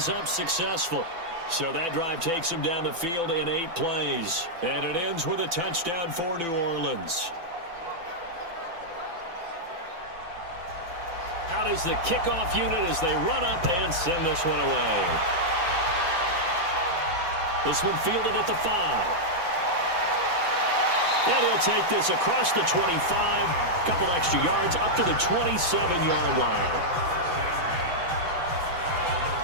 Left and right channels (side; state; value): left; late; 5.9 ms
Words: up successful. So that drive takes them down the field in 8 plays. And it ends with a touchdown for New Orleans. Out is the kickoff unit as they run up and send this one away. This one fielded at the 5. And he'll take this across the 25. Couple extra yards up to the 27-yard line.